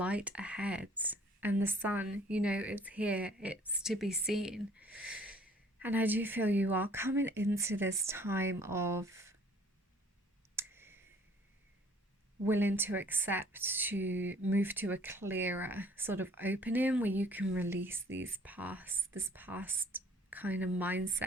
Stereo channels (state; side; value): normal; both; correlation 0.56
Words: ahead, and the sun, it's here, it's to be seen. And I do feel you are coming into this time of willing to accept, to move to a clearer sort of opening where you can release this past kind of